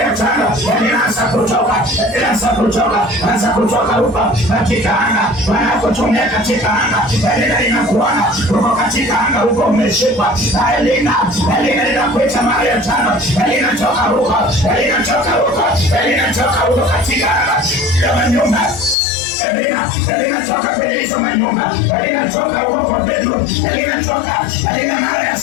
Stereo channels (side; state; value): right; drops out; at 18.9 s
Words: ya tano. Elina anza kutoka huko katika anga. Wanakutumia katika anga. Elina inakuona huko katika anga huko umeshikwa. Elina inakuita mara ya tano. Elina toka huko katika anga ya manyumba. Elina toka kwenye hizo manyumba. Elina toka huko bedroom. Elina mara ya